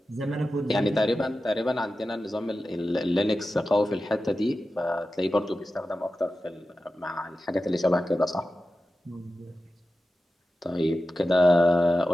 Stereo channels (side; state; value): both; normal; correlation 0.93